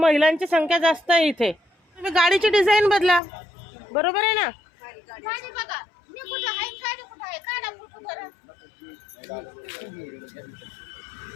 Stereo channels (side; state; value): right; drops out; at 3.2 s